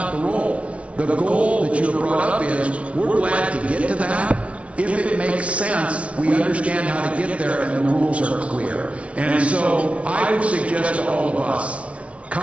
the role. The goal that you brought up is, we're glad to get to that. If it makes sense, we understand how to get there, and the rules are clear. And so I would suggest to all of us,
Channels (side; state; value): left; late; 0.063 ms